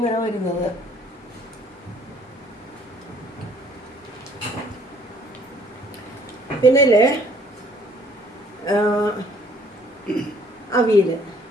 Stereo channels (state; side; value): normal; both; correlation 0.59